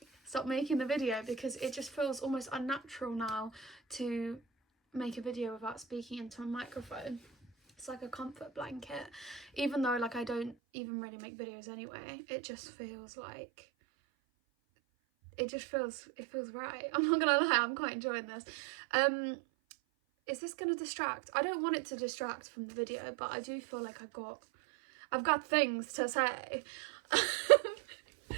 stop making the video, because it just feels almost unnatural now to make a video without speaking into a microphone. It's like a comfort blanket, even though like I don't even really make videos anyway. It just feels like it feels right. I'm not gonna lie, I'm quite enjoying this. Is this gonna distract? I don't want it to distract from the video, but I do feel like I've got things to say.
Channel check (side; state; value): left; drops out; at 10.6 s